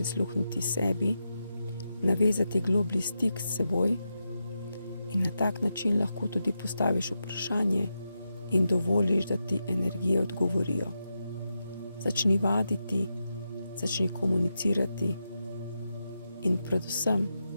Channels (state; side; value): inverted; both; correlation -0.87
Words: sebi, navezati globlji stik s seboj in na tak način lahko tudi postaviš vprašanje in dovoliš, da ti energije odgovorijo. Začni vaditi, začni komunicirati in predvsem